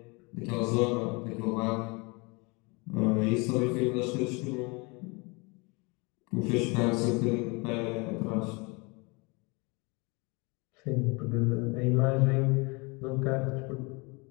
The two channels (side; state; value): right; quieter; 28.4 dB